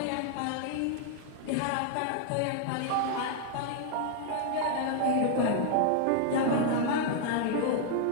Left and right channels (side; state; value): both; different; correlation 0.00